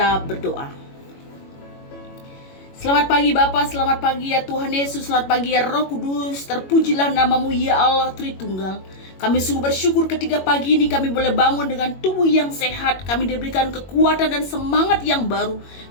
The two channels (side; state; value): right; late; 21 ms